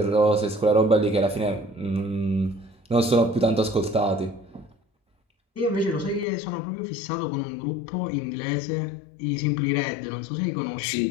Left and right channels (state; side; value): drops out; right; at 6.2 s